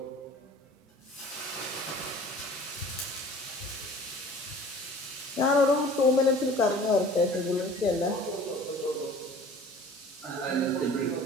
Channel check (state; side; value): normal; both; correlation 0.46